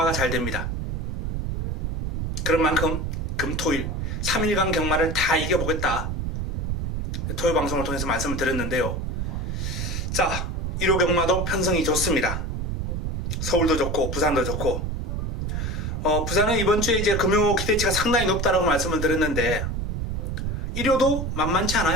잘 됩니다. 그런 만큼 금토일 3일간 경마를 다 이겨보겠다. 토요 방송을 통해서 말씀을 드렸는데요. 자, 1호 경마도 편성이 좋습니다. 서울도 좋고 부산도 좋고 부산은 이번 주에 이제 금요 기대치가 상당히 높다라고 말씀을 드렸는데 1호도 만만치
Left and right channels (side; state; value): right; noise; rumble, 2 dB below the sound